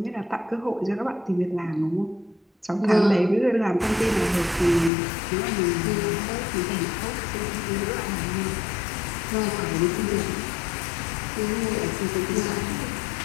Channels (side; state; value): right; drops out; at 4.9 s